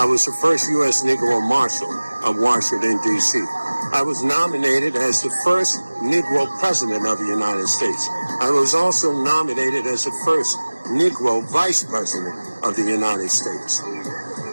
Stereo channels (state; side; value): inverted; both; correlation -1.00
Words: was the first U.S. Negro Marshal of Washington, D.C. I was nominated as the first Negro President of the United States. I was also nominated as the first Negro Vice President of the United States.